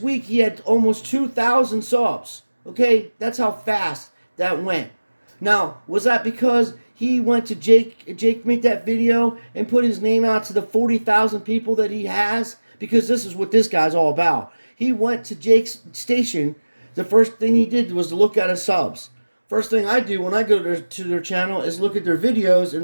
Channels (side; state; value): both; inverted; correlation -1.00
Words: week he had almost 2,000 subs. Okay? That's how fast that went. Now, was that because he went to Jake made that video and put his name out to the 40,000 people that he has? Because this is what this guy's all about. He went to Jake's station. The first thing he did was to look at his subs. First thing I do when I go to their channel is look at their videos